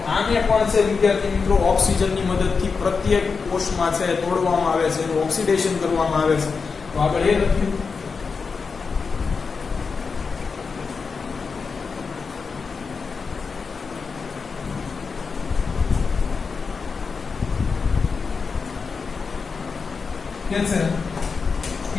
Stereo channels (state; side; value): quieter; right; 5.0 dB